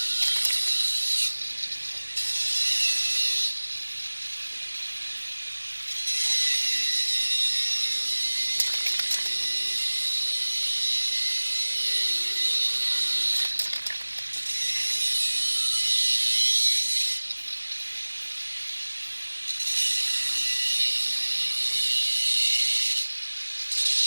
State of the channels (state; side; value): inverted; both; correlation -1.00